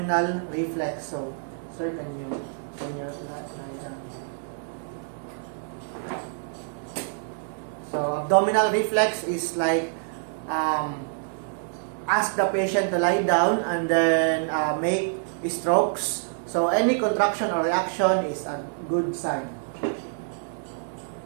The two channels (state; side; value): silent; left; digital silence